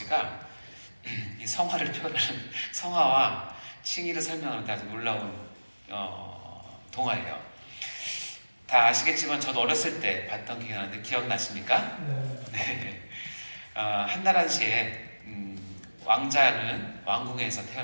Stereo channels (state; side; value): inverted; both; correlation -1.00